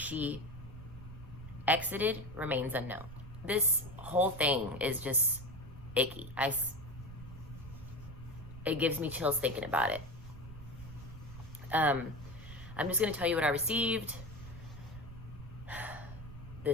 exited remains unknown. This whole thing is just icky. It gives me chills thinking about it. I'm just going to tell you what I received.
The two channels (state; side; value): noise; right; rumble, 14 dB below the sound